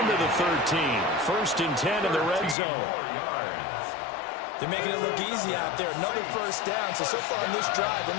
to the 13. 1st and 10 in the red zone. They're making it look easy out there. Another first down. So far in this drive, let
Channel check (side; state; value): right; drops out; at 2.6 s